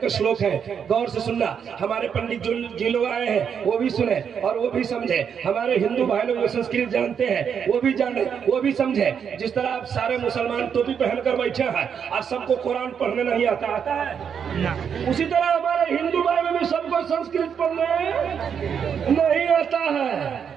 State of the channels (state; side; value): quieter; left; 7.4 dB